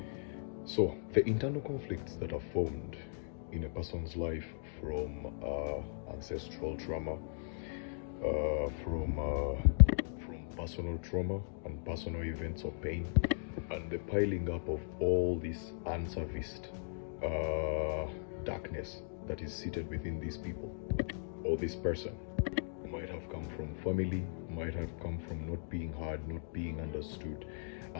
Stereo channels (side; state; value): right; silent; digital silence